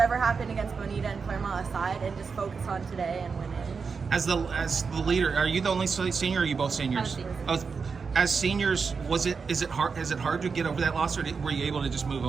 happened against Bonita and Claremont aside and just focus on today and winning. As the leader, are you the only senior or are you both seniors? Oh, as seniors, is it hard to get over that loss, or were you able to just move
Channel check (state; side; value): quieter; left; 5.3 dB